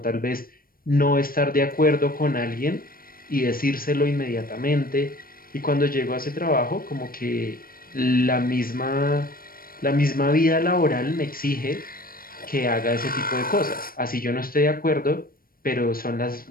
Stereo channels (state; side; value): late; right; 0.42 ms